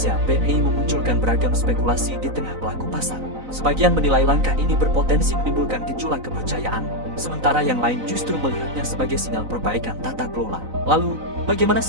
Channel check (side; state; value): left; late; 4.0 ms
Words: (BEI) memunculkan beragam spekulasi di tengah pelaku pasar. Sebagian menilai langkah ini berpotensi menimbulkan gejolak kepercayaan, sementara yang lain justru melihatnya sebagai sinyal perbaikan tata kelola. Lalu, bagaimana